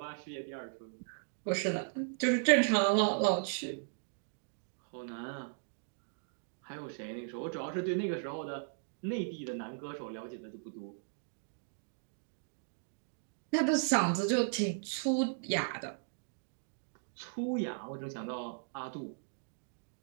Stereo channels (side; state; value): left; silent; digital silence